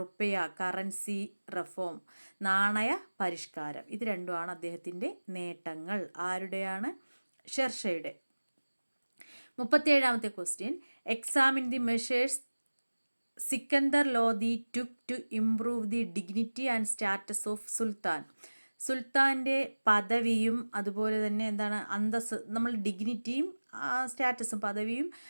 കറൻസി റിഫോം, നാണയ പരിഷ്കാരം. ഇത് രണ്ടുമാണ് അദ്ദേഹത്തിൻ്റെ നേട്ടങ്ങൾ. ആരുടെയാണ്? ഷെർഷയുടെ. 37ാമത്തെ question. Examine the measures Sikandar Lodi took to improve the dignity and status of sultan. സുൽത്താൻ്റെ പദവിയും അതുപോലെ തന്നെ എന്താണ് അന്തസ്, നമ്മൾ ഡിഗ്നിറ്റിയും സ്റ്റാറ്റസും പദവിയും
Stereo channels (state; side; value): inverted; both; correlation -1.00